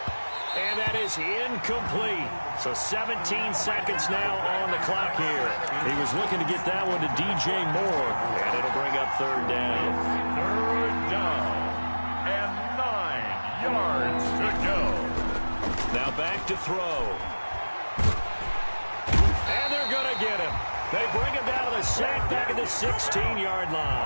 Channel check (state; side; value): inverted; both; correlation -1.00